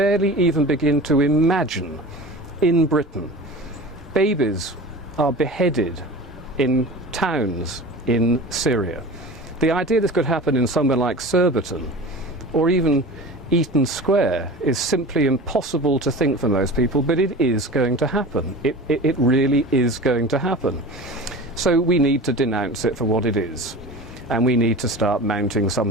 even begin to imagine in Britain. Babies are beheaded in towns in Syria. The idea this could happen in somewhere like Surbiton, or even Eaton Square is simply impossible to think for most people, but it is going to happen. It really is going to happen. So we need to denounce it for what it is, and we need to start mounting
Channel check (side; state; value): both; normal; correlation 0.35